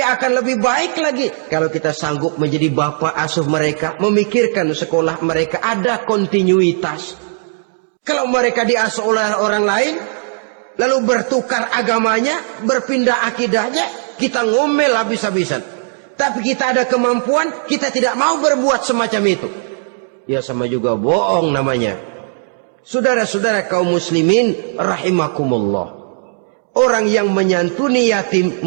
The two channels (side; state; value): left; silent; 68 dB below the other